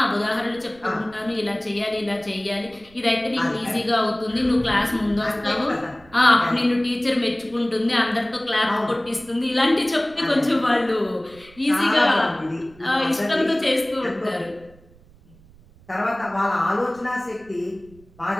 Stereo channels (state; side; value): noise; right; rumble, 26 dB below the sound